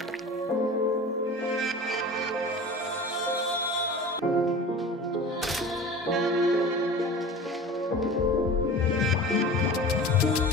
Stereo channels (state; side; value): normal; both; correlation 0.37